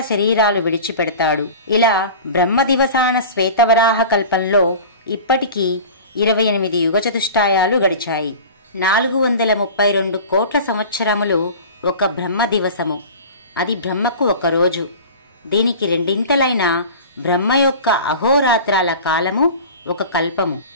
శరీరాలు విడిచిపెడతాడు. ఇలా బ్రహ్మదివసాన శ్వేతవరాహ కల్పంలో ఇప్పటికీ 28 యుగచతుష్టాయాలు గడిచాయి. 432 కోట్ల సంవత్సరములు ఒక బ్రహ్మ దివసము. అది బ్రహ్మకు ఒక రోజు. దీనికి రెండింతలైన బ్రహ్మ యొక్క అహోరాత్రాల కాలము ఒక కల్పము.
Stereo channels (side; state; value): both; inverted; correlation -0.37